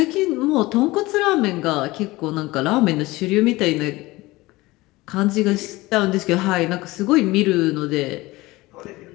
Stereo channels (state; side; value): quieter; right; 20.2 dB